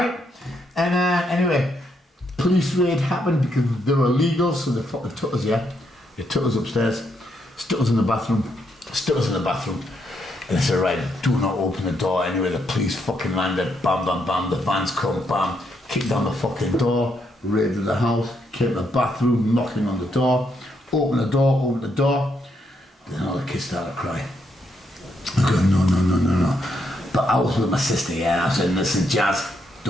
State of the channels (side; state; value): both; normal; correlation 0.77